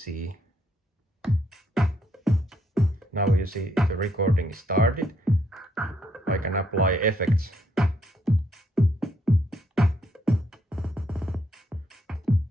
Now you see the recording is started. I can apply effects.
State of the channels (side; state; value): both; normal; correlation 0.73